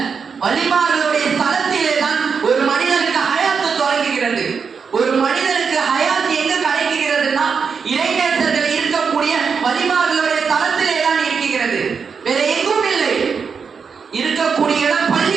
வலிமார்களுடைய ஸ்தலத்திலே தான் ஒரு மனிதனுக்கு ஹயாத்து தொடங்குகிறது. ஒரு மனிதனுக்கு ஹயாத் எங்கு கிடைக்கிறதுனா இறைநேசர்கள் இருக்கக்கூடிய வலிமார்களுடைய தளத்திலே தான் இருக்கிறது, வேற எங்கும் இல்லை. இருக்கக்கூடிய இடம்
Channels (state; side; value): quieter; left; 5.9 dB